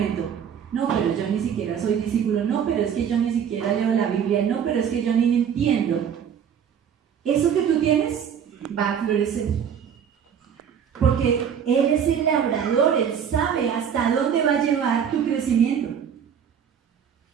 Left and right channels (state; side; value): quieter; left; 8.0 dB